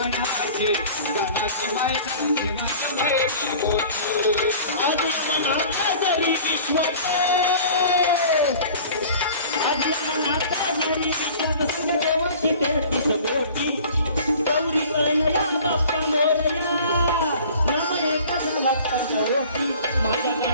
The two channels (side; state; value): both; inverted; correlation -0.45